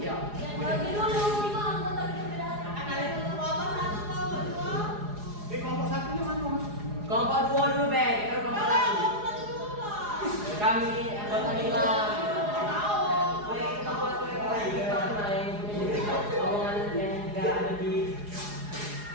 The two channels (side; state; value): left; late; 4.8 ms